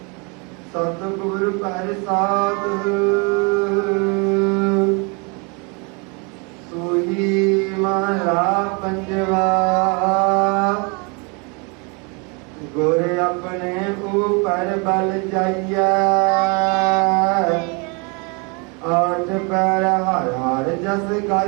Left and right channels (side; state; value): left; quieter; 32.1 dB